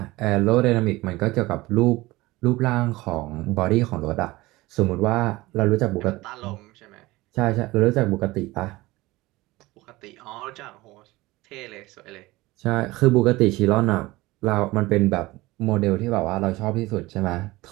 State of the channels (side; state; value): left; quieter; 20.0 dB